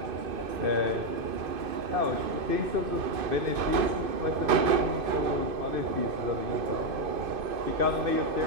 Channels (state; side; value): late; left; 2.5 ms